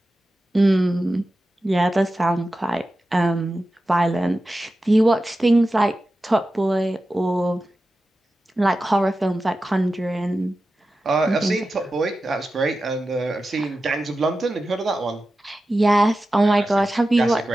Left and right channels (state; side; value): normal; both; correlation 0.93